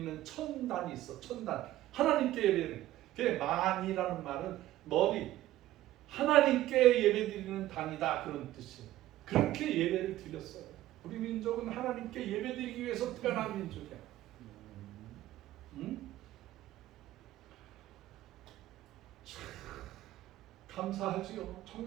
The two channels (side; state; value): left; quieter; 14.7 dB